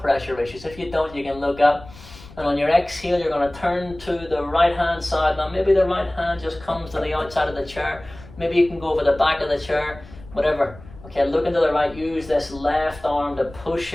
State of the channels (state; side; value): noise; left; rumble, 19 dB below the sound